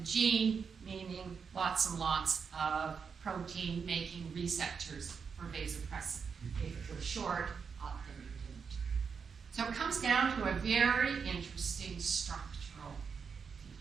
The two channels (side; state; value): left; quieter; 6.0 dB